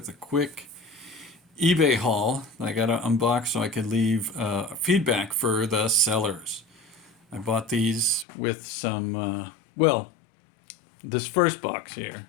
a quick eBay haul I got to unbox so I could leave feedback for the sellers. I bought these with some, this first box here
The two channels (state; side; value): drops out; right; at 8.2 s